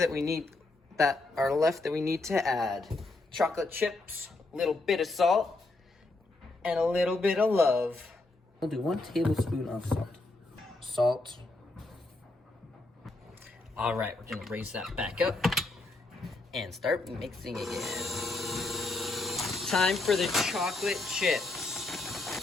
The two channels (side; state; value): right; quieter; 3.1 dB